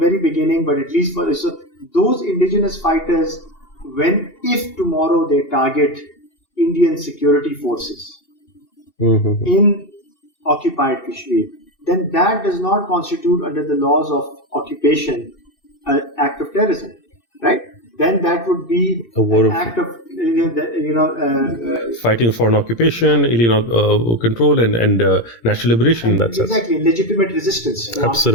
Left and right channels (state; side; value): late; right; 17 ms